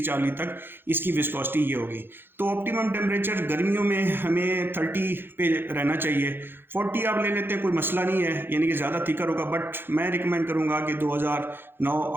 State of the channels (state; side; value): late; left; 0.10 ms